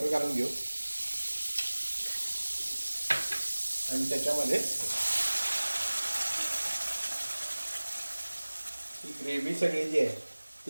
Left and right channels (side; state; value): both; inverted; correlation -1.00